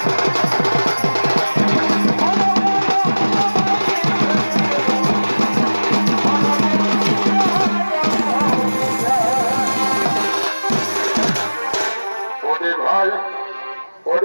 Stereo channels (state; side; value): inverted; both; correlation -1.00